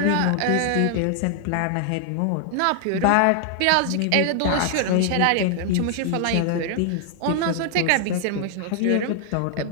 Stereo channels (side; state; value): both; different; correlation 0.00